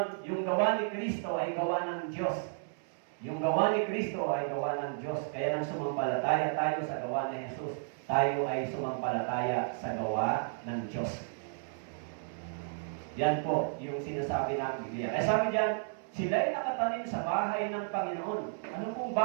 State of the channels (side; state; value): left; silent; 56 dB below the other